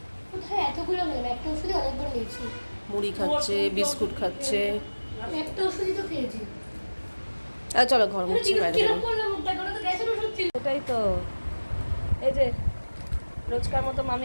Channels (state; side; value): inverted; both; correlation -1.00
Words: কোথায় এতগুলো গেল? একটা ওষুধই অনেকবার নিয়েছি। মুড়ি খাচ্ছে, বিস্কুট খাচ্ছে। আমি একটা ওষুধই তো খেয়েছি। চলো ঘর মুছছি, বাইরে কিরকম করলাম মুখটা, কোনো তো গ্যাসের ওষুধ ছিল। এটাই তো, এই যে রোজকার মতো